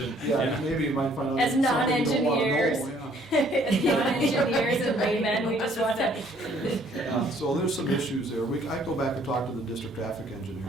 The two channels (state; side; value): normal; both; correlation 0.61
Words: Yeah, maybe you might find out. As something you don't wanna know, non-engineers, yeah. as non-engineers and laymen, we just want to. Yeah, so there's some issues there. I go back and talk to the district traffic